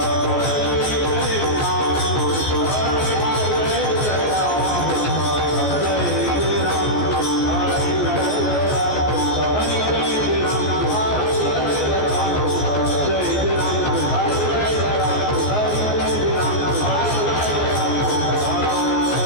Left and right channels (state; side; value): late; right; 14 ms